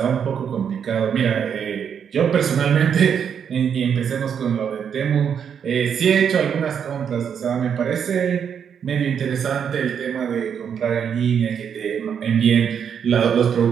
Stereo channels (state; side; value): quieter; left; 7.7 dB